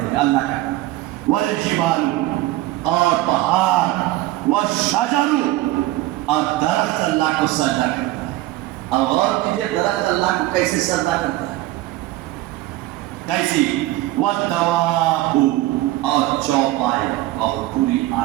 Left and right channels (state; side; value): quieter; left; 16.7 dB